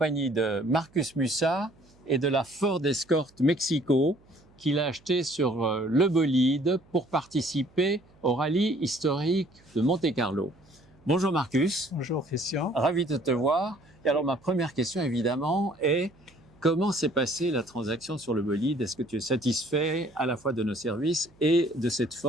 de Marcus Mussat et de la Ford Escort Mexico qu'il a acheté sur le bolide pour participer au rallye historique de Monte-Carlo. Bonjour Marcus. Bonjour Christian. Ravi de te voir. Et alors ma première question évidemment est comment s'est passée la transaction sur le bolide? Est-ce que tu es satisfait à la fois de nos services et de cette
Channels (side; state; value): right; noise; hum, 29 dB below the sound